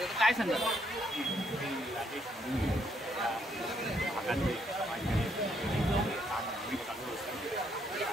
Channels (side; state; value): both; normal; correlation 0.73